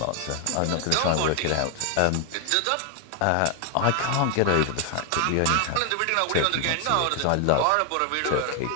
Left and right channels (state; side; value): different; both; correlation 0.00